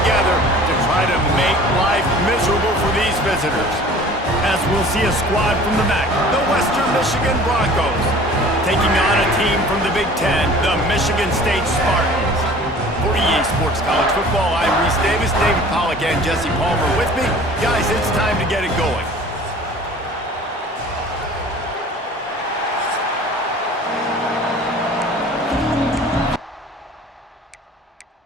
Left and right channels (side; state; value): both; normal; correlation 0.46